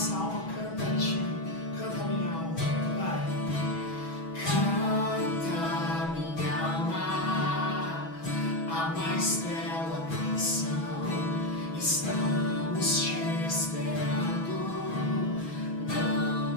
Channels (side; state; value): right; late; 6.2 ms